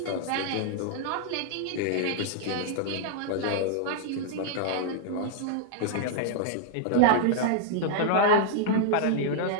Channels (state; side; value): different; both; correlation -0.01